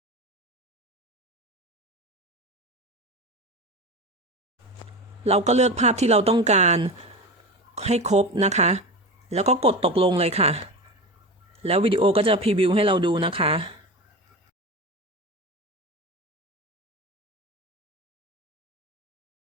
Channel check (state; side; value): normal; both; correlation 0.26